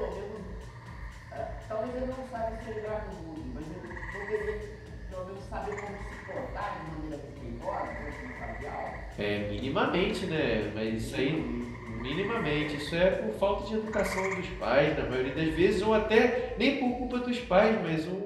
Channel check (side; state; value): both; identical; correlation 1.00